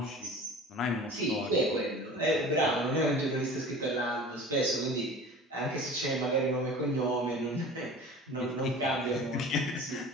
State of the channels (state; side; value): normal; both; correlation 0.40